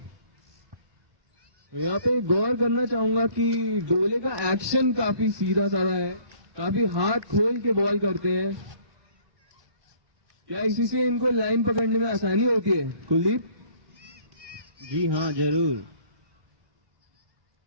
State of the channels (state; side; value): late; left; 1.2 ms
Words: यहाँ पे गौर करना चाहूंगा कि डोले का एक्शन काफी सीधा साधा है, काफी हाथ खोल के बॉल करते हैं। क्या इसी से इनको लाइन पकड़ने में आसानी होती है कुलदीप? जी हाँ, जरूर।